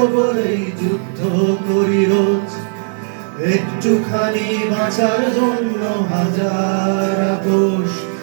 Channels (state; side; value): silent; left; digital silence